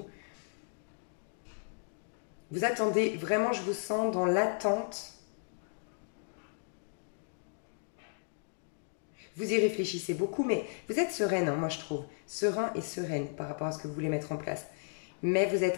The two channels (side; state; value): right; silent; digital silence